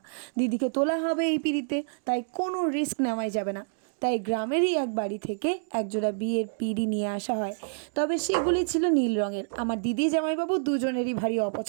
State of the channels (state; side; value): silent; left; digital silence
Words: দিদিকে তোলা হবে এই পিঁড়িতে, তাই কোনো রিস্ক নেওয়াই যাবে না। তাই গ্রামেরই এক বাড়ি থেকে একজোড়া বিয়ের পিঁড়ি নিয়ে আসা হয়। তবে সেগুলি ছিল নীল রঙের। আমার দিদি জামাইবাবু দুজনেরই ভারী